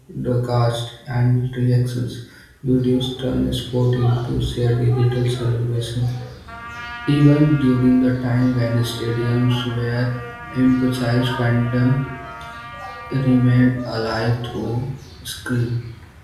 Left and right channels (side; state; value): both; identical; correlation 1.00